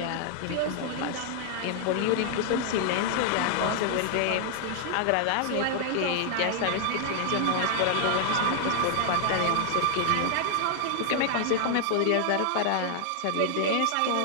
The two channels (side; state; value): both; different; correlation 0.00